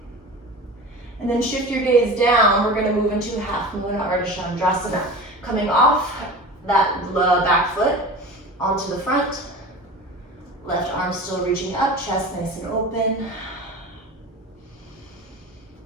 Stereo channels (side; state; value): both; normal; correlation 0.34